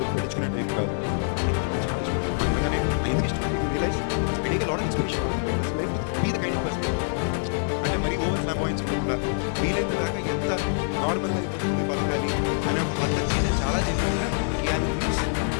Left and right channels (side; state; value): right; silent; digital silence